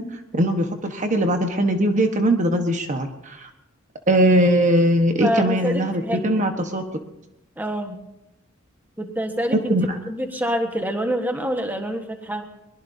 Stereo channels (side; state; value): both; normal; correlation 0.52